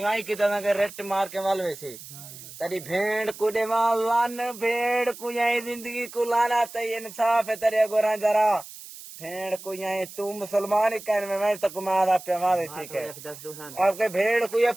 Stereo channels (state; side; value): noise; right; hiss, 15 dB below the sound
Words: کیتا سنگے ریٹ مار کے والوے سے تیری بھیڑ کو دے لان بھیڑ کو یہی زندگی کو لانا تے انصاف ہے تیرے گوراں جرا بھیڑ کو یہی تو مسلمان ہی کہنے میں تک مارا پہ مارے ٹھیک ہے آپ کے بھیڑ کو یہ